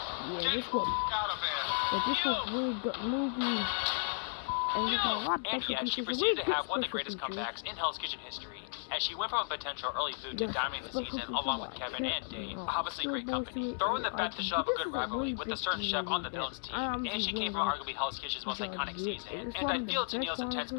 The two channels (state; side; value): silent; right; 55 dB below the other